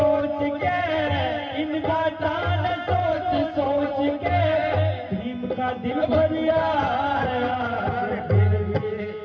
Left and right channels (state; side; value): identical; both; correlation 1.00